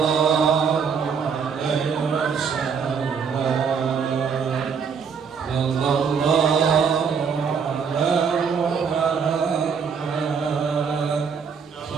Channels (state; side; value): quieter; left; 6.3 dB